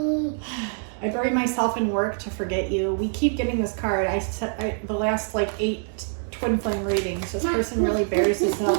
I bury myself in work to forget you. We keep getting this card. The last like 8 twin flame readings. This person really buries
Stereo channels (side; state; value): left; silent; digital silence